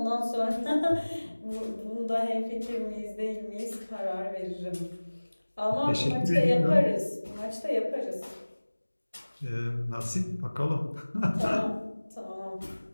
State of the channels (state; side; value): inverted; both; correlation -1.00